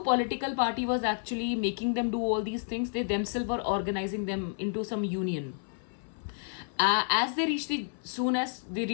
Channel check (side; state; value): right; silent; 58 dB below the other